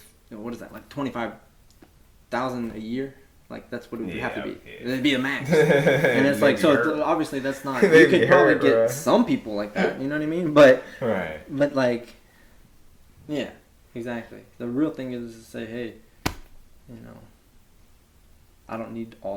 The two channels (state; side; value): identical; both; correlation 1.00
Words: what is that, like 25,000 a year? Like that's what it would have to be. Yeah. It'd be a max, and it's like so. Obviously, that's not. You could probably get some people like that. You know what I mean? But right. But like, yeah, exactly. The real thing is to say, hey, I don't need